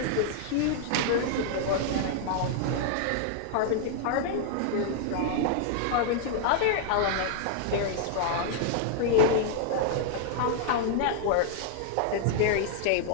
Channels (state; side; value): different; both; correlation -0.01